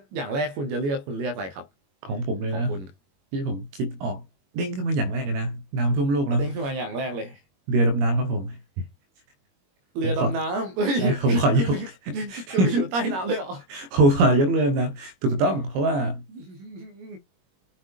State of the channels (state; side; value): late; left; 21 ms